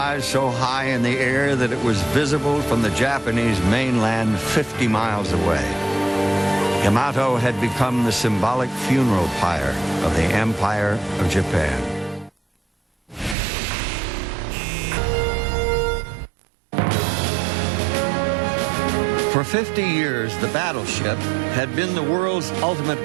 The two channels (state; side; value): drops out; left; at 13.4 s